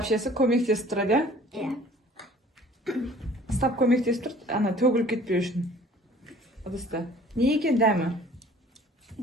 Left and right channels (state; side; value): normal; both; correlation 0.51